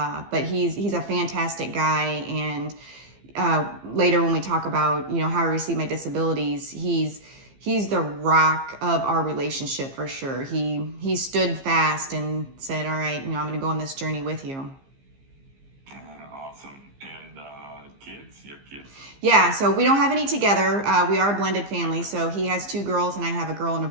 But he's a fantastic guy. And later when we talk about, how I received my disabilities, he's the rock of our relationship for sure. He stood fast and said, all right, I'm going to go on this journey with you. Awesome. And kids? You have kids? Yeah, so we don't have any together. We are a blended family. So he has 2 girls and I have a girl and a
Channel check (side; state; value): left; late; 15 ms